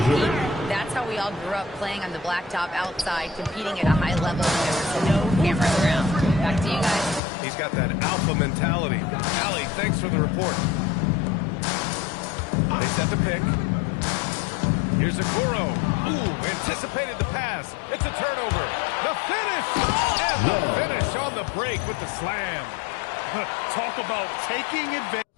That's how we all grew up, playing on the blacktop outside, competing at a high level. There was no cameras around. Back to you guys. He's got that alpha mentality. Allie, thanks for the report. They set the pick. Here's Okoro. Ooh, anticipated the pass. It's a turnover. The finish! And the finish on the break with the slam. Talk about taking advantage.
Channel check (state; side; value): drops out; right; at 7.2 s